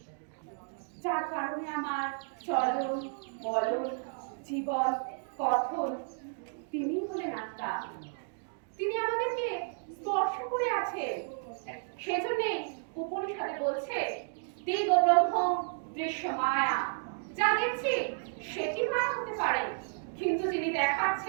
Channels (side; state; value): left; silent; digital silence